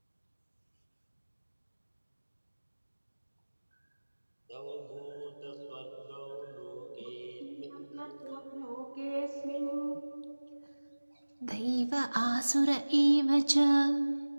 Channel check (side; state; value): both; inverted; correlation -1.00